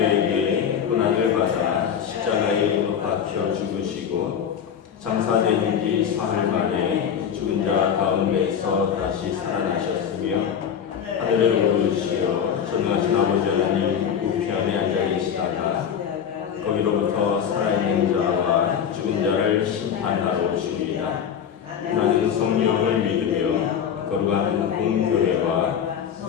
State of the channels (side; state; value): right; quieter; 8.2 dB